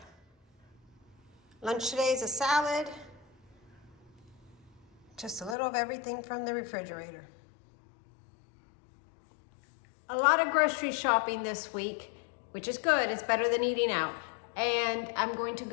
Lunch today is a salad, just a little of everything from the refrigerator. A lot of grocery shopping this week, which is good. It's better than eating out. And I'm going to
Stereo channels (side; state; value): right; drops out; at 5.6 s